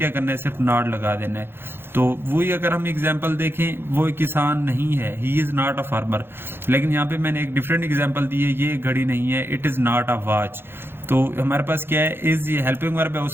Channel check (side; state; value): left; late; 0.11 ms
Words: کرنا ہے؟ صرف ناٹ لگا دینا ہے. تو وہی اگر ہم ایگزامپل دیکھیں، وہ کسان نہیں ہے، ہی از ناٹ اے فارمر. لیکن یہاں پہ میں نے ایک ڈفرینٹ ایگزامپل دی ہے، یہ گھڑی نہیں ہے، it is not a watch. تو ہمارے پاس کیا ہے؟ از، یہ ہیلپنگ ورب ہے.